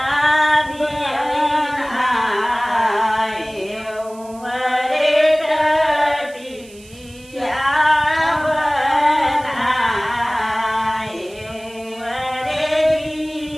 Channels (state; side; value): noise; right; hiss, 23 dB below the sound